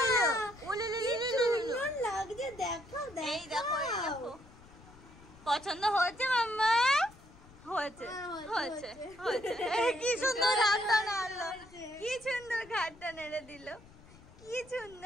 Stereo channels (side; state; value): left; noise; rumble, 22 dB below the sound